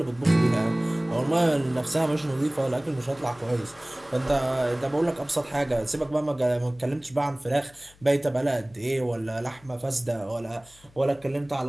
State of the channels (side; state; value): left; noise; hum, 27 dB below the sound